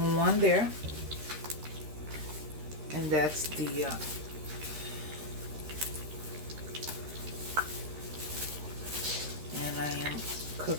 one there, and that's the and I am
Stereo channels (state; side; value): late; left; 13 ms